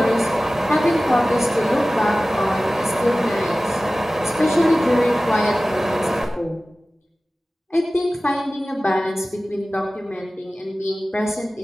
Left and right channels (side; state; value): both; normal; correlation 0.97